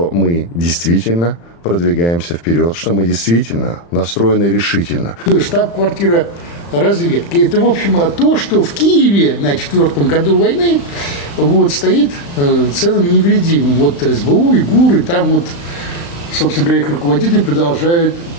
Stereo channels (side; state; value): right; late; 35 ms